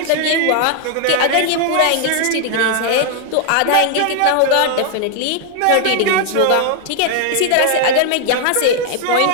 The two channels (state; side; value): different; both; correlation 0.00